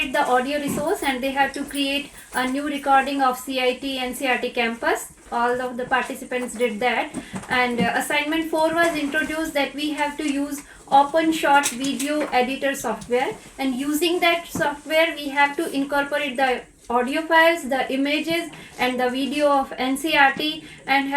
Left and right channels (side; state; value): both; identical; correlation 1.00